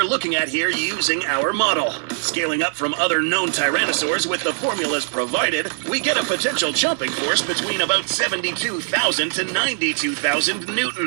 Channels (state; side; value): silent; left; 65 dB below the other